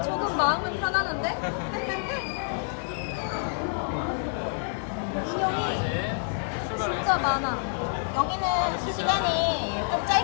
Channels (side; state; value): right; silent; digital silence